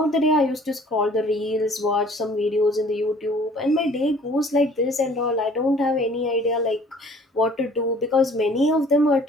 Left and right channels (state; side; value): normal; both; correlation 0.53